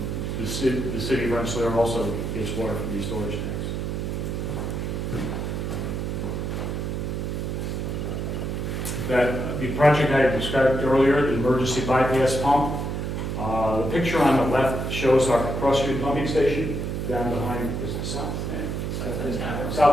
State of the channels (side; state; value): right; noise; hum, 2 dB below the sound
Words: the city of Rensselaer also gets water from these storage tanks. The project I described earlier, the emergency bypass pump, the picture on the left shows our Cross Street pumping station down behind, is it south?